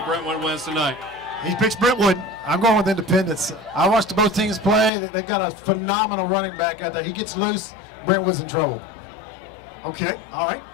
Brentwood wins tonight. He picks Brentwood. I'm going with Independence. I watched both teams play. They've got a phenomenal running back out there. He gets loose, Brentwood's in trouble. Okay, all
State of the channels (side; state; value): right; drops out; at 4.9 s